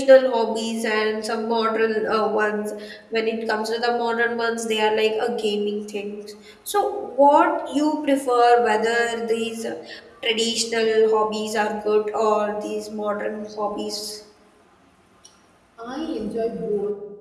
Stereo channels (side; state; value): both; identical; correlation 1.00